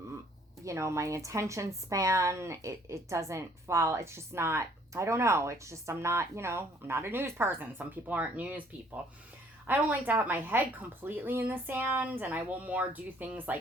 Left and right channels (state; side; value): normal; both; correlation 0.61